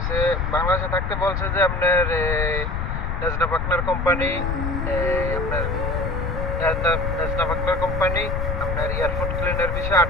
বাংলাদেশে থাকতে বলছে যে আপনার নেজনা পার্টনার কোম্পানি, আপনার নেজনা পার্টনার কোম্পানি আপনার এয়ারপোর্ট ক্লিনার বিষয়ে 8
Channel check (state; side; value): noise; left; rumble, 2 dB below the sound